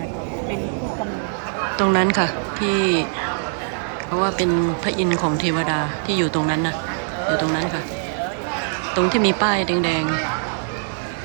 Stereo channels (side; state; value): left; silent; 64 dB below the other